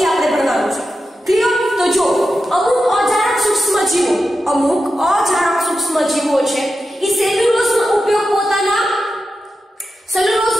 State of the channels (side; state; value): both; normal; correlation 0.90